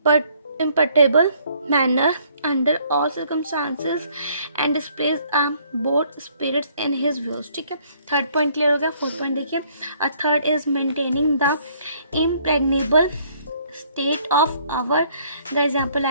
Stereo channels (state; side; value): inverted; both; correlation -0.64